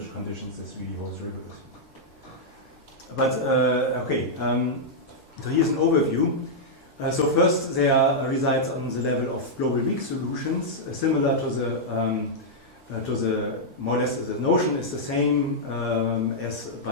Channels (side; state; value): both; normal; correlation -0.07